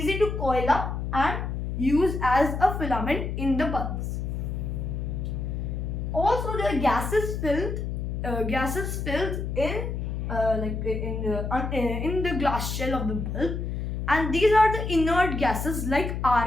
to coil up and use as a filament in the bulbs. Also, there are gases filled in the glass shell of the bulb, and these are the inert gases like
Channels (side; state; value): left; noise; hum, 3 dB below the sound